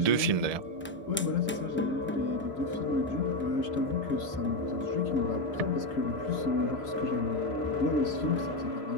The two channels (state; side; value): normal; both; correlation 0.09